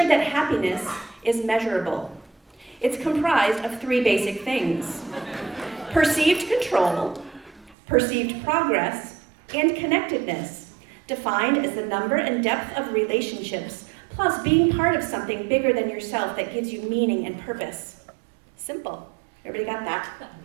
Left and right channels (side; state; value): left; drops out; at 7.8 s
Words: that happiness is measurable. It's comprised of three basic things: perceived control, perceived progress, and connectedness, defined as the number and depth of relationships, plus being part of something bigger than yourself that gives you meaning and purpose. Simple. Everybody got that?